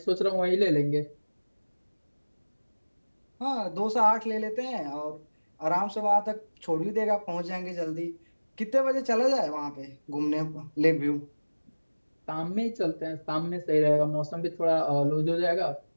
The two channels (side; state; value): both; inverted; correlation -1.00